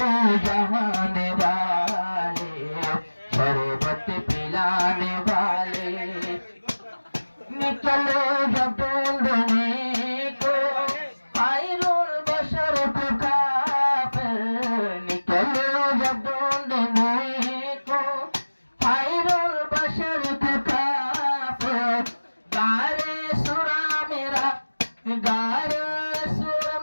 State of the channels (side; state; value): both; inverted; correlation -1.00